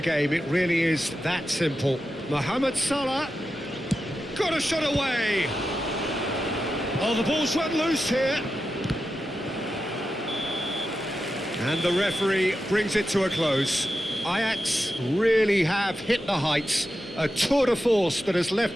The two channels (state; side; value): normal; both; correlation 0.90